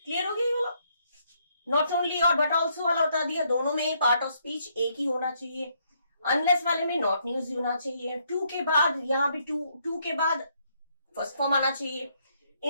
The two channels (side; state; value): both; inverted; correlation -0.73